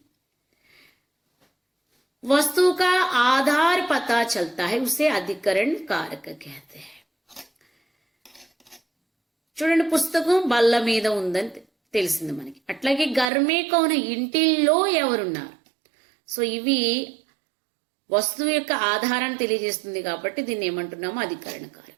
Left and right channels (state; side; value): drops out; left; at 13.2 s